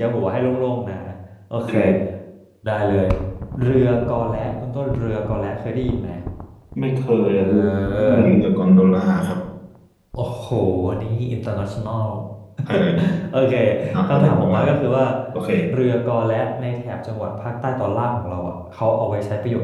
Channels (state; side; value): identical; both; correlation 1.00